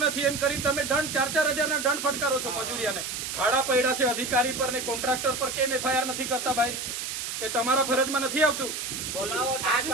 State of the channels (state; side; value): noise; right; hiss, 5 dB below the sound